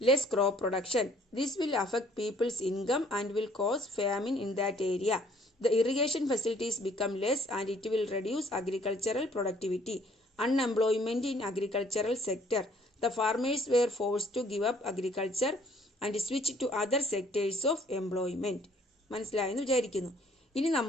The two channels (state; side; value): normal; both; correlation 0.60